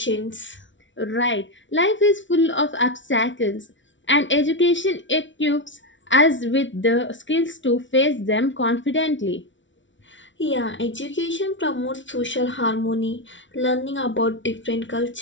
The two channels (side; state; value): right; late; 0.55 ms